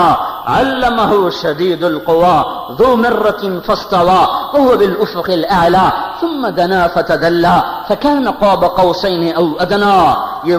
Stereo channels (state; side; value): identical; both; correlation 1.00